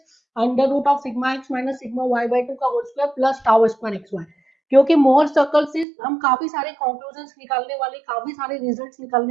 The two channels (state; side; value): drops out; left; at 5.9 s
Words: under root of sigma x minus sigma Y by two का whole square plus tau square x y. क्योंकि Mohr circle से हम काफी सारे conclusion निकालने वाले, काफी सारे रिजल्ट्स